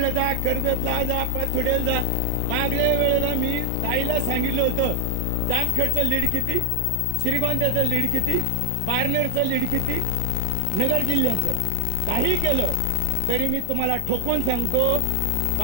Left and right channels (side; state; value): both; different; correlation 0.00